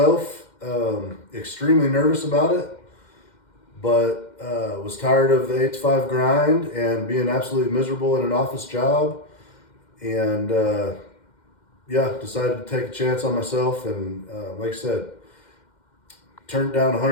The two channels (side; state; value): right; late; 2.1 ms